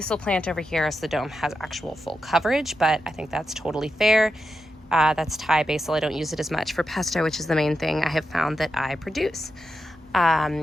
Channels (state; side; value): normal; both; correlation 0.88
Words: plant over here so the dome has actual full coverage, but I think that's totally fair. That's Thai basil. I don't use it as much for pesto, which is the main thing I have found that I produce